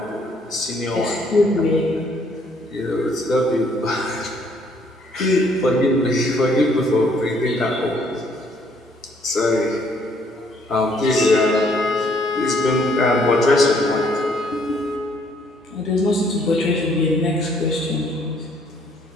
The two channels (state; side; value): normal; both; correlation 0.65